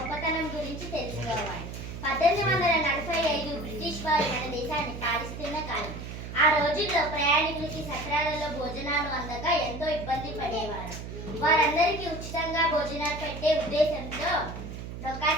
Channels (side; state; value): right; noise; hum, 9 dB below the sound